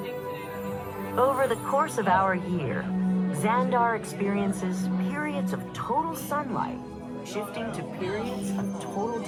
Over the course of our year, Xandar experiences periods of total sunlight, shifting to periods of total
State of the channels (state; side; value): identical; both; correlation 1.00